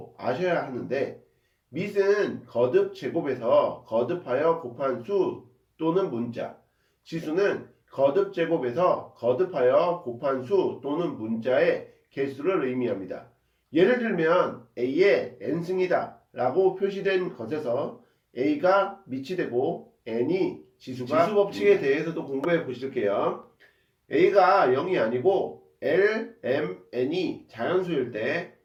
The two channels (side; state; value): both; identical; correlation 1.00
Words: 아셔야 하는데, 밑은 거듭 제곱에서 거듭하여 곱한 수 또는 문자, 지수는 거듭 제곱에서 거듭하여 곱한 수 또는 문자의 개수를 의미합니다. 예를 들면 A의 n승이다 라고 표시된 것에서 A가 밑이 되고 n이 지수가 지수 법칙에 대해서도 공부해 보실게요. A가 0이 아니고 L, M, N이 자연수일 때